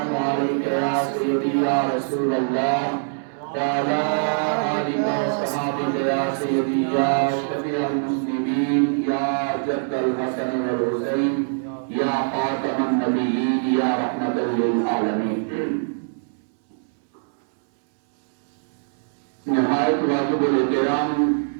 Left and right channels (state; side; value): silent; left; 63 dB below the other